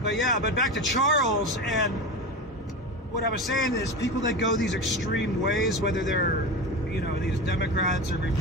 But yeah, but back to Charles, and what I was saying is people that go these extreme ways, whether they're, you know, these Democrats or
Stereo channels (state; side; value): normal; both; correlation 0.25